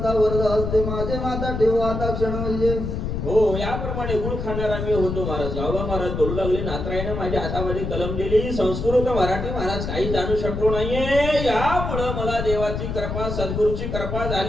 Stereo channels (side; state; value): left; noise; rumble, 4 dB below the sound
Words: वरद हस्ते माझे माता ठेव आता क्षण म्हणजे. हो याप्रमाणे गुळ खाणारा मी होतो महाराज. गावा महाराज बोलू लागले नातराईने माझ्या हातामध्ये कलम दिली. संस्कृत मराठी महाराज काही जाणू शकलो नाहीये. यामुळं मला देवाची कृपा सद्गुरूची कृपा